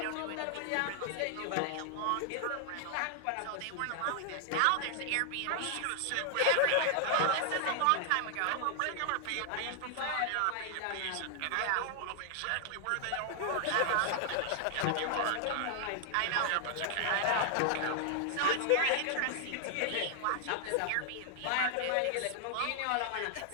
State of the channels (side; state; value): both; different; correlation 0.00